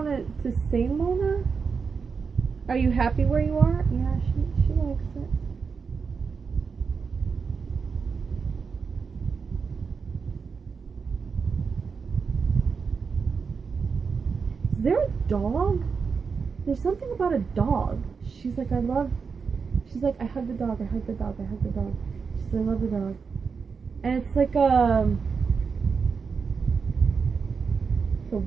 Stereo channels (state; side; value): quieter; left; 5.5 dB